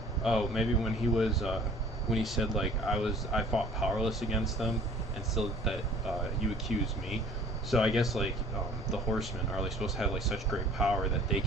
Oh, maybe when he was when he said like I fought powerless against them, and still that you accuse me. So I guess like the horsemen are like supposed to have like such great power that they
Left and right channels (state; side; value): normal; both; correlation 0.50